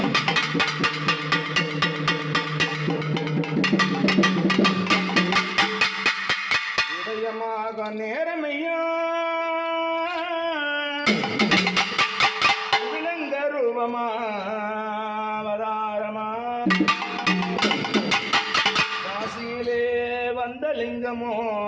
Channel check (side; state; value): both; identical; correlation 1.00